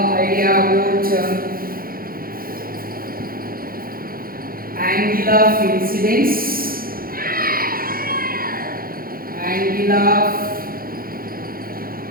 about angle of incidence, angle of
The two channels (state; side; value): late; left; 0.42 ms